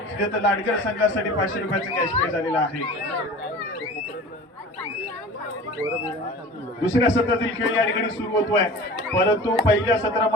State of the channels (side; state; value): both; normal; correlation 0.38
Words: लाडगर संघासाठी 500 रुपयाचं कॅश प्राइज आलेलं आहे. दुसऱ्या सत्रातील खेळ या ठिकाणी सुरू होतोय, परंतु पहिल्या